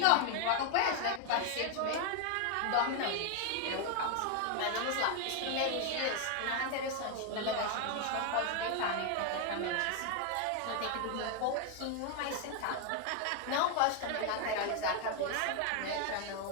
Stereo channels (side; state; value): both; different; correlation 0.01